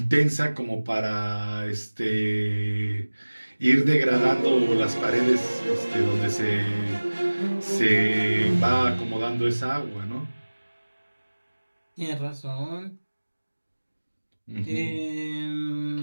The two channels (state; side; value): inverted; both; correlation -1.00